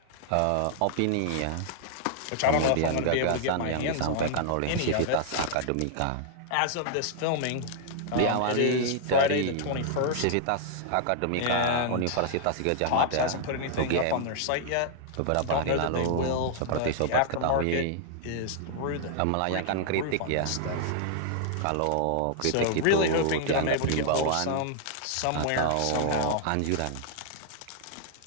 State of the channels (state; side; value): different; both; correlation -0.01